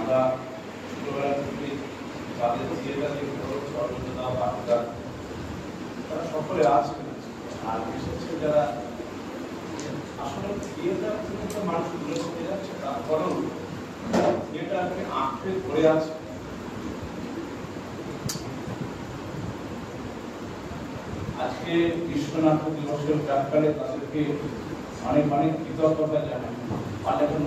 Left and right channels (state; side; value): identical; both; correlation 1.00